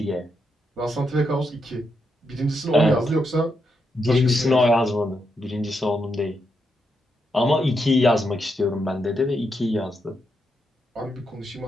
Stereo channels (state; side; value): normal; both; correlation 0.82